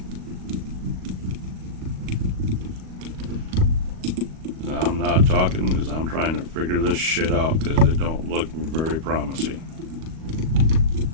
I'm not talking because I'm trying to figure this shit out because it don't look very promising.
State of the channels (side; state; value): left; late; 38 ms